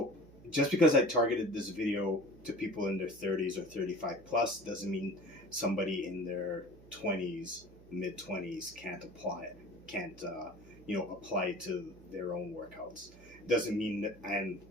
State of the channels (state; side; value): noise; right; hum, 22 dB below the sound